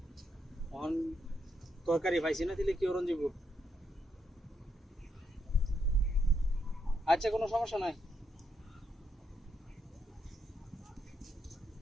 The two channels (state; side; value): normal; both; correlation 0.79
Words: অন তরকারি পাইছি না দিলে কি ওরন যাব। আচ্ছা কোনো সমস্যা নাই।